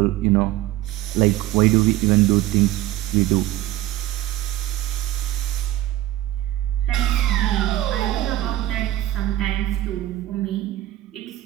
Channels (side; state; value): left; quieter; 14.9 dB